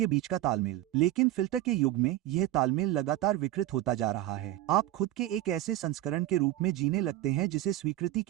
बीच का तालमेल। लेकिन फिल्टर के युग में यह तालमेल लगातार विकृत होता जा रहा है। आप खुद के एक ऐसे संस्करण के रूप में जीने लगते हैं जिसे स्वीकृति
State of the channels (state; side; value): quieter; left; 14.5 dB